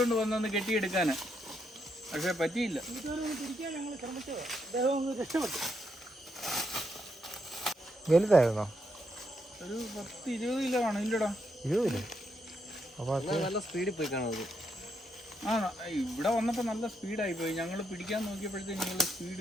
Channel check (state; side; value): normal; both; correlation 0.79